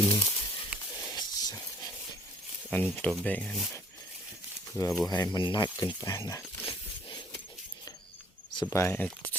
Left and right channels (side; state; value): both; normal; correlation 0.58